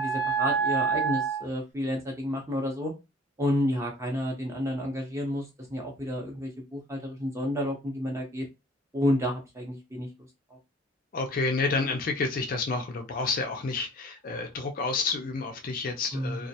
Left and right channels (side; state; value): both; normal; correlation 0.48